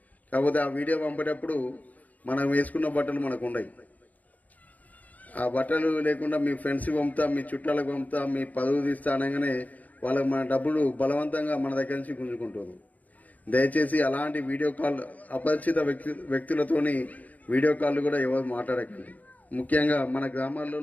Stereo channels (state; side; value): late; right; 0.077 ms